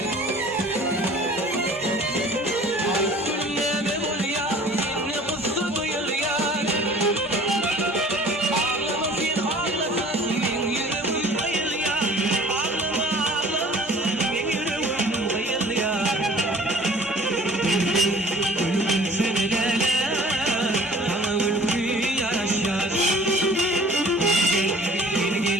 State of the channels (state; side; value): normal; both; correlation 0.50